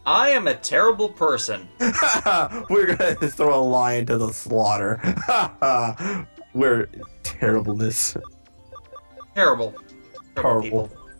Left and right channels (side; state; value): both; inverted; correlation -1.00